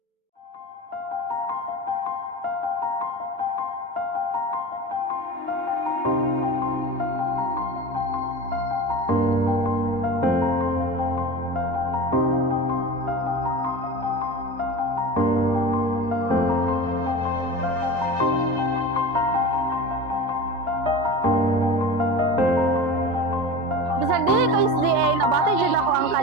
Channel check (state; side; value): normal; both; correlation 0.30